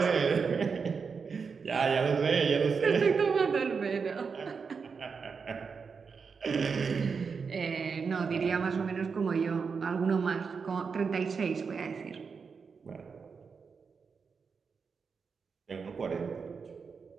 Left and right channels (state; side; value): quieter; left; 5.5 dB